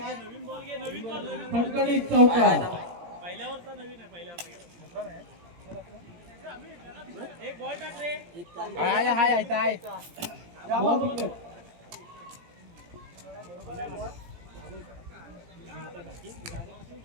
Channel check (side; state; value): left; late; 17 ms